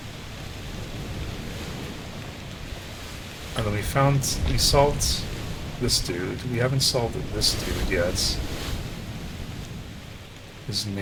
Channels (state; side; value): identical; both; correlation 1.00